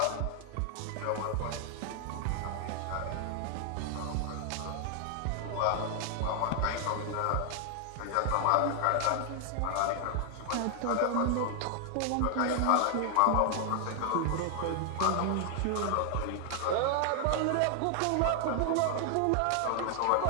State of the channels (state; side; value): different; both; correlation 0.00